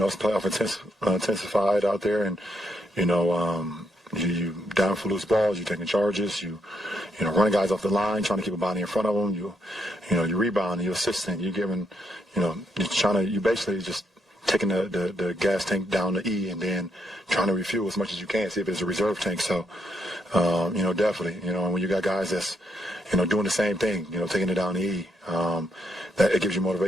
playoff intensified out there, and you down for loose balls, you're taking charges, you running guys off the line, trying to keep a body in front of them, you rebound, you assisting, you're giving, you basically just taking the gas tank down to E and then trying to refuel as much as you can, see if it's a reserve tank. So, definitely, when you got guys that's, doing the same thing, taking it down to E, that it gives you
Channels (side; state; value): both; normal; correlation 0.77